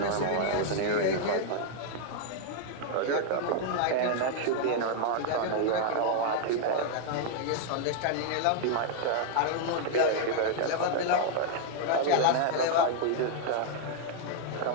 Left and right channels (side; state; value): both; different; correlation 0.00